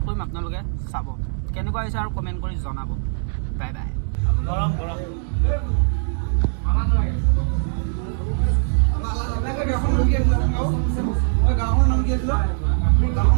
কৰিম, আপোনালোকে চাব। কেনেকুৱা হৈছে আৰু কমেণ্ট কৰি জনাব। Bye bye. গৰম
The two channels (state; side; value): silent; left; 64 dB below the other